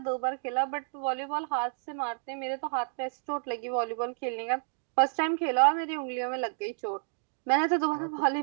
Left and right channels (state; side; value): silent; left; 58 dB below the other